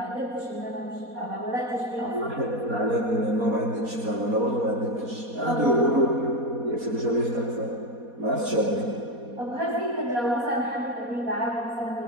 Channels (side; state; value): left; late; 4.2 ms